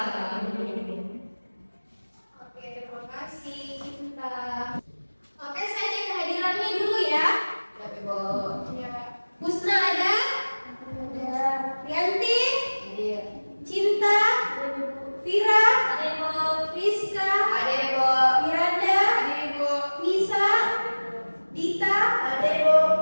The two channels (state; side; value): inverted; both; correlation -1.00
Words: Oke, terima kasih Cinta. Oke, saya cek kehadirannya dulu ya. Ya, Ibu. Ya. Husna ada? Ada. Rianti? Ada. Cinta? Ada. Vira? Ada, Ibu. Rizka? Ada, Ibu. Miranda? Ada, Ibu. Nisa? Dita? Ada, Ibu.